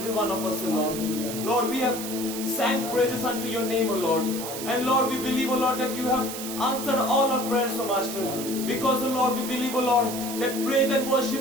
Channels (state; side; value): noise; right; hiss, 8 dB below the sound